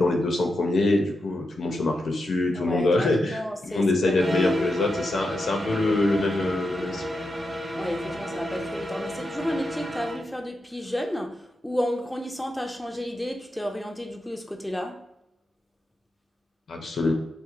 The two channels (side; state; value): both; normal; correlation 0.87